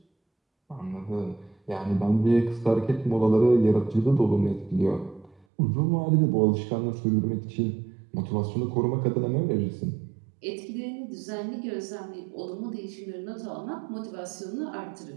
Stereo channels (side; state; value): left; drops out; at 5.5 s